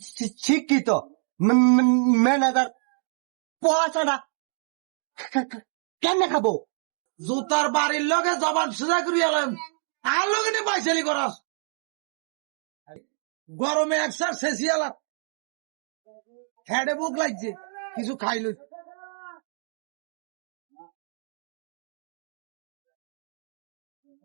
শিক্ষিত, manager পড়াশোনা কেমনে খাবো? জুতার বাড়ির লগে জবান সোজা করিয়া এলাম, আর লগে নিয়ে পাইছালি করাস। গরমে একসার শেষিয়ালা হেডে বুক লাগছে, কিছু খাইল।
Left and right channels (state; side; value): silent; left; 60 dB below the other